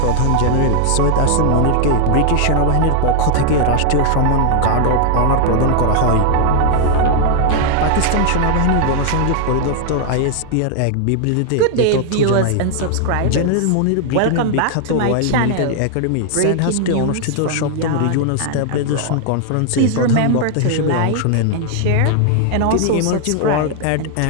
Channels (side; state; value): both; different; correlation 0.00